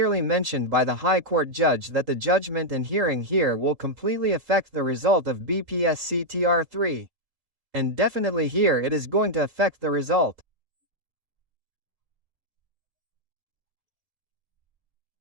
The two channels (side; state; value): left; late; 3.8 ms